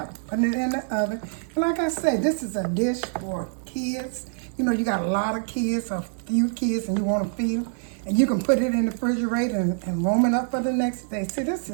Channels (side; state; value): left; silent; 62 dB below the other